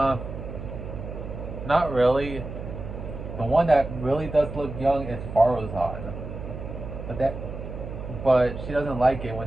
not really. The one that really does look young is Faruzan. But she doesn't like it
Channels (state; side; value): noise; right; hum, 9 dB below the sound